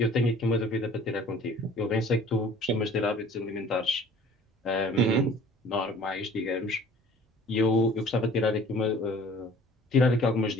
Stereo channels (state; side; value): normal; both; correlation 0.50